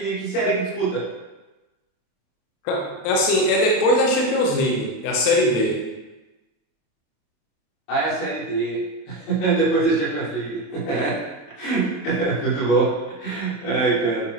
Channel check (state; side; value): late; right; 27 ms